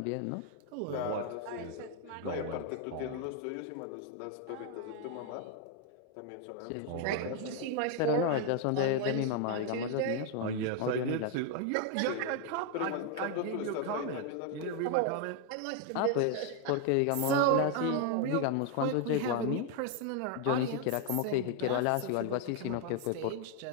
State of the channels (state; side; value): different; both; correlation 0.01